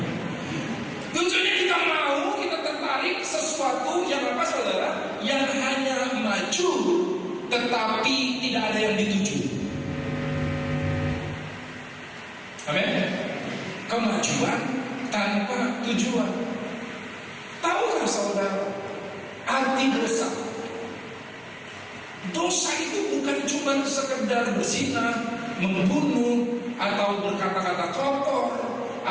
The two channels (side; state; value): both; identical; correlation 1.00